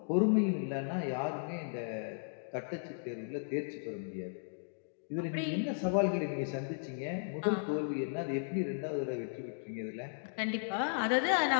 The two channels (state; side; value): silent; right; digital silence